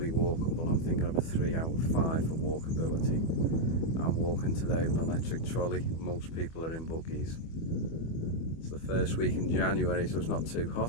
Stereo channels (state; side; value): late; right; 25 ms